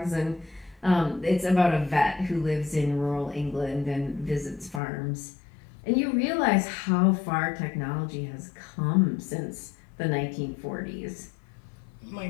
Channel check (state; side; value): drops out; right; at 4.8 s